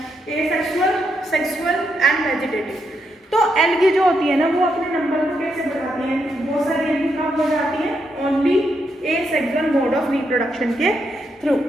एसेक्सुअल, सेक्सुअल एंड वेजिटेटिव। तो एल्गी जो होती है ना वो अपने नंबर को कैसे बढ़ाती है, बहुत सारी एल्गी कब हो जाती है, only asexual mode of reproduction के थ्रू।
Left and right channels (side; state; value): both; normal; correlation 0.80